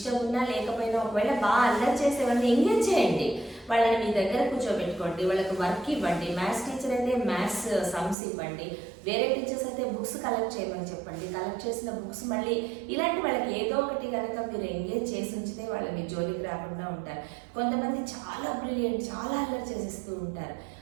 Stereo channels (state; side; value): drops out; left; at 8.2 s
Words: ఉన్నా లేకపోయినా ఒకవేళ బాగా అల్లరి చేసేవాళ్ళని ఎంగేజ్ చేయండి, వాళ్ళని మీ దగ్గర కూర్చోబెట్టుకోండి, వాళ్ళకి వర్క్ ఇవ్వండి. మ్యాథ్స్ టీచర్ అయితే మ్యాథ్స్ సమ్స్ ఇవ్వండి, వేరే టీచర్స్ అయితే బుక్స్ కలెక్ట్ చేయమని చెప్పండి. కలెక్ట్ చేసిన బుక్స్ మళ్ళీ ఇలాంటి వాళ్ళకి ఏదో ఒకటి కనుక మీరు ఎంగేజ్ చేసి ఉంచితే వాళ్ళు మీ జోలికి రాకుండా ఉంటారు. కొంతమంది చాలా బ్రిలియంట్, చాలా అల్లరి చేసేస్తూ ఉంటారు.